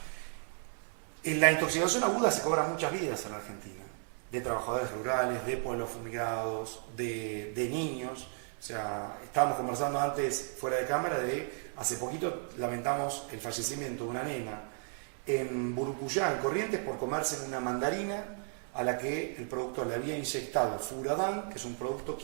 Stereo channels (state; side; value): silent; left; 55 dB below the other